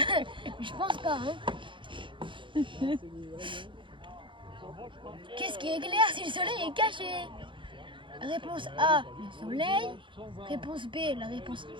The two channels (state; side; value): late; left; 0.24 ms